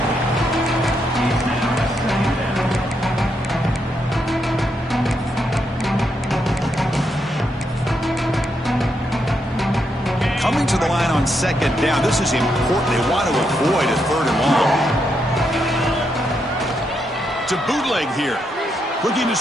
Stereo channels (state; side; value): normal; both; correlation 0.80